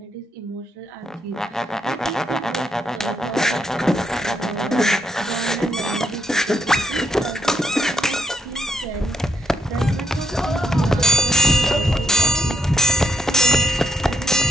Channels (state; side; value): normal; both; correlation 0.79